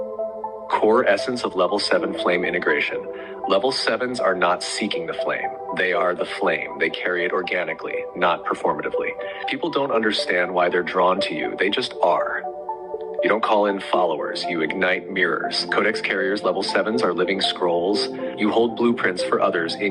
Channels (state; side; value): identical; both; correlation 1.00